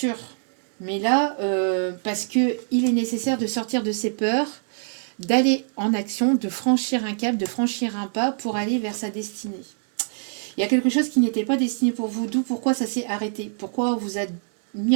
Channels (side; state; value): left; silent; digital silence